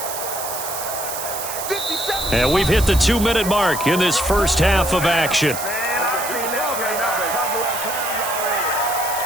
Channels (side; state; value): right; noise; hiss, 6 dB below the sound